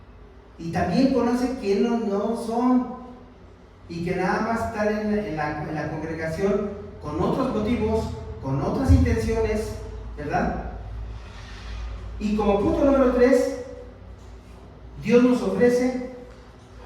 y también conoce quiénes no son, y que nada más están en la congregación con otros motivos, con otras intenciones, ¿verdad? Y como punto número 3, Dios nos ofrece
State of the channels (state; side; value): identical; both; correlation 1.00